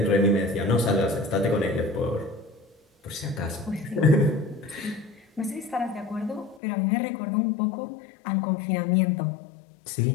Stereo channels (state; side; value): drops out; right; at 6.6 s